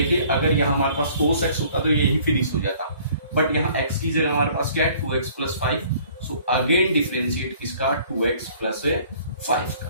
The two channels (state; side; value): inverted; both; correlation -0.55